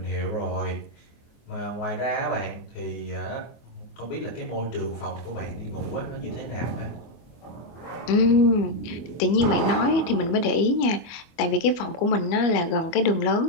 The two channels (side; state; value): right; late; 25 ms